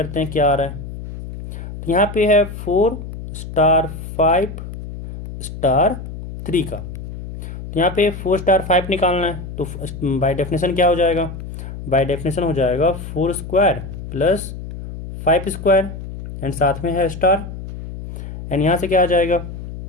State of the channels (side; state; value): left; noise; hum, 10 dB below the sound